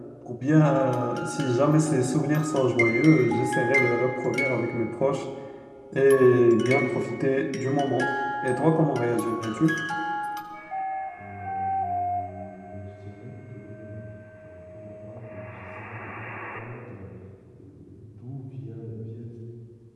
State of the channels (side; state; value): both; identical; correlation 1.00